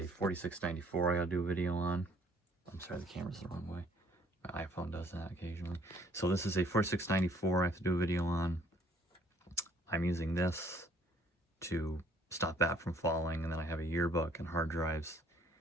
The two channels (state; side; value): normal; both; correlation 0.60